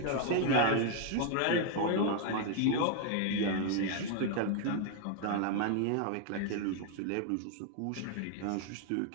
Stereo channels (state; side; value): different; both; correlation 0.00